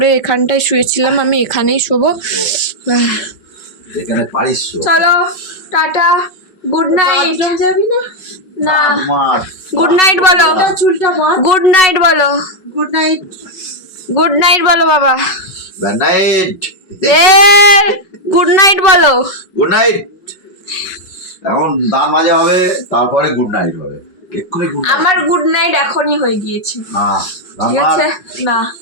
এখানটায় শুয়েছিলাম, আমি এখানেই শোবো। যেখানে পারিস চলো টাটা, গুড নাইট। যাবি না? না মার গুড নাইট বলো চুলটা মা গুড নাইট বলো গুড নাইট গুড নাইট বলো বাবা good night a good night বলো গুড নাইট এখন দাঁত মাজা হবে তারপরে গুড নাইট হবে এক্ষুনি গুড নাইট আমার গুড নাইট এখনই হয়ে গিয়েছে না ঠিক আছে না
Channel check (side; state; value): right; late; 5.4 ms